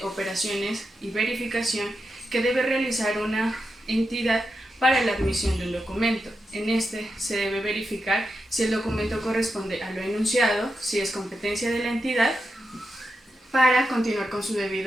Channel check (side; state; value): both; normal; correlation 0.88